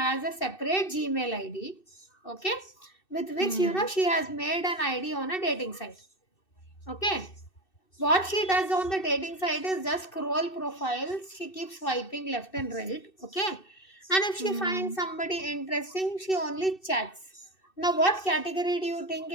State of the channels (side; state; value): right; late; 2.6 ms